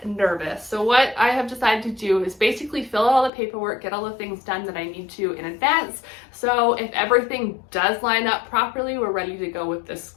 nervous. So what I have decided to do is basically fill out all the paperwork, get all the things done that I need to in advance, so if everything does line up properly, we're ready to go with this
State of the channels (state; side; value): drops out; right; at 3.3 s